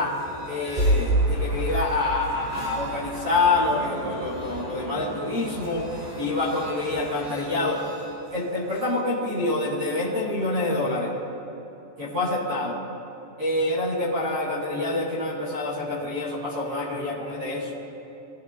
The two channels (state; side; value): late; left; 14 ms